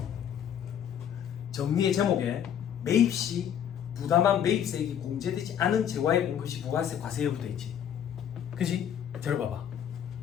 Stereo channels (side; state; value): right; quieter; 9.3 dB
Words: 정리의 제목에 매입 시 부담한 매입세액이 공제되지 않은 재화에 본 것이 부가세 과세 여부 돼 있지. 그지? 들어봐봐.